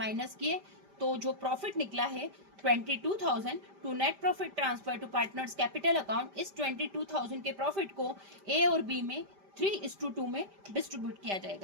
किए तो जो प्रॉफिट निकला है 22,000 to net profit transfer to partners capital account. इस 22,000 के प्रॉफिट को ए और बी में 3:2 में डिस्ट्रीब्यूट किया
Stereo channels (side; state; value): left; late; 5.1 ms